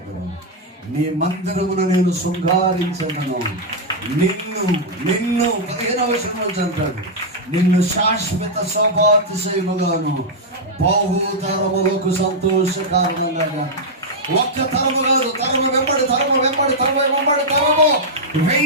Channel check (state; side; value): normal; both; correlation -0.04